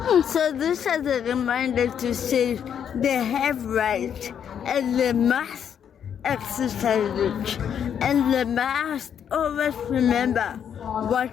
So this is a reminder to say they have rights and they must exercise it. And they must always remember what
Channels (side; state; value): right; quieter; 8.5 dB